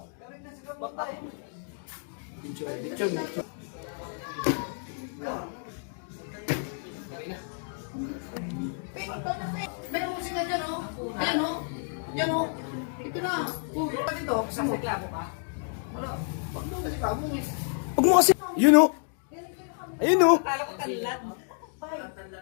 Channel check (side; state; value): right; silent; 57 dB below the other